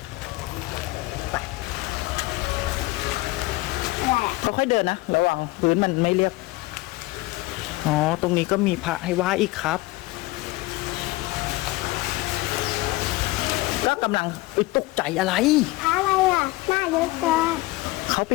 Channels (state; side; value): quieter; right; 20.7 dB